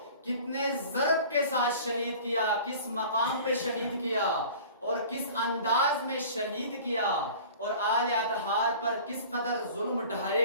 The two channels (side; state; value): both; inverted; correlation -0.43